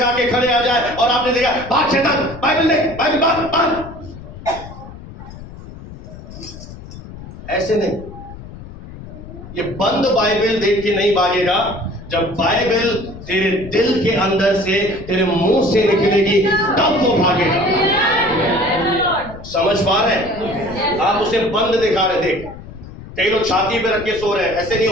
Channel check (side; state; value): left; noise; rumble, 15 dB below the sound